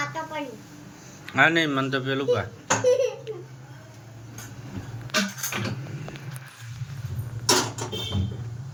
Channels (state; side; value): identical; both; correlation 1.00